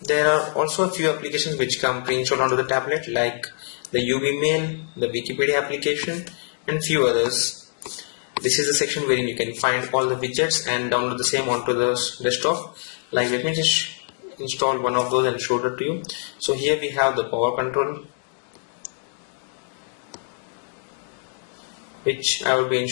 There are also a few applications which come pre-installed onto the tablet, like the UbiMail, the Wikipedia application, and few others. This is the section wherein you can find all the widgets and download the same onto the desktop. Like, let me just install one of those and show it to you. So here we have the power control, which I will be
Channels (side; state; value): right; silent; digital silence